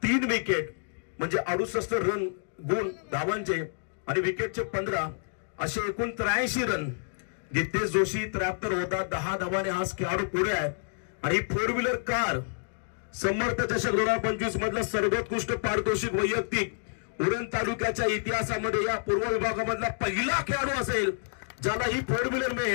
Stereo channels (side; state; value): right; silent; digital silence